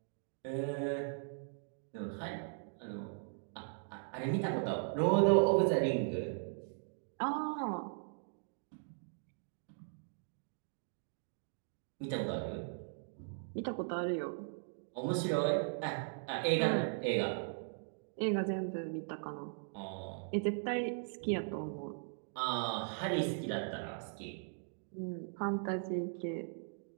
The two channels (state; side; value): silent; left; digital silence